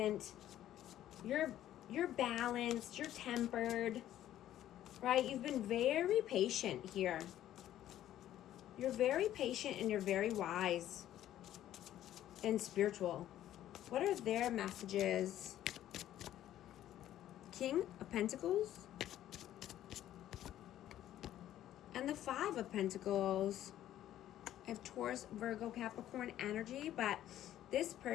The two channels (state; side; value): quieter; right; 12.4 dB